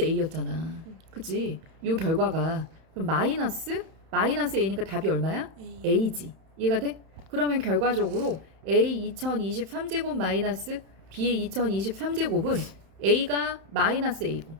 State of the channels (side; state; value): left; late; 31 ms